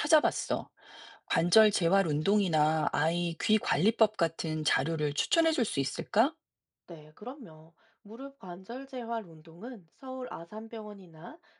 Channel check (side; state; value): both; identical; correlation 1.00